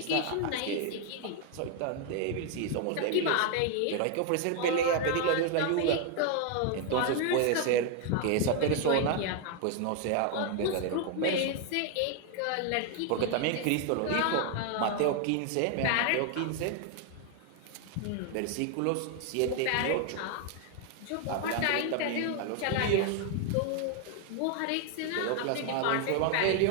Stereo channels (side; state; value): both; different; correlation 0.00